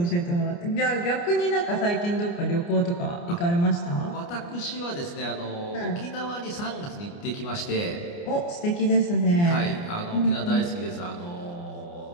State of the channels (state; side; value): late; right; 29 ms